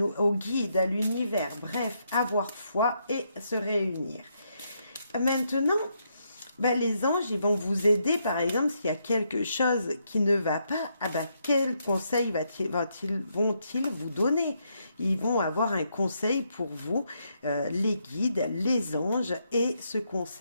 au guide, à l'univers. Bref, avoir foi et se réunir. Maintenant, Ben, les anges, ils vont vous aider, par exemple, s'il y a quelque chose qui ne va pas, ah ben, quel conseil vont-ils vous donner? Ils vont avoir un conseil pour vous, les guides, les anges, et ce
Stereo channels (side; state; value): both; inverted; correlation -0.78